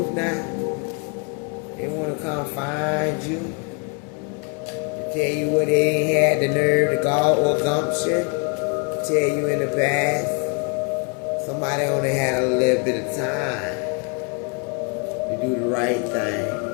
now? They want to come find you? Tell you what they ain't had the nerve to go or gumption. Tell you in the past. Somebody only had a little bit of time to do the right thing.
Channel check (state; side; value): quieter; right; 35.1 dB